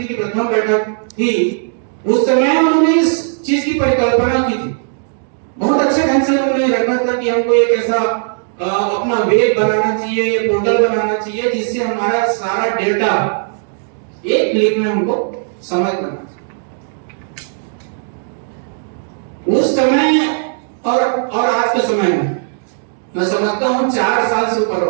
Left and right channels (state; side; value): silent; left; 69 dB below the other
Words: की प्रथम बैठक थी, उस समय उन्होंने इस चीज की परिकल्पना की थी। बहुत अच्छे ढंग से उन्होंने रखा था कि हमको एक ऐसा अपना वेब बनाना चाहिए, पोर्टल बनाना चाहिए जिससे हमारा सारा डेटा एक क्लिक में हमको समझ पाना। उस समय और आज के समय में मैं समझता हूं 4 साल से ऊपर